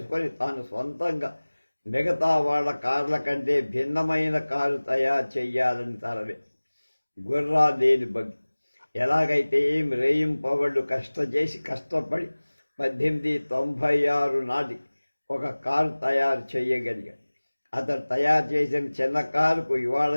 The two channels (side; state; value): both; inverted; correlation -1.00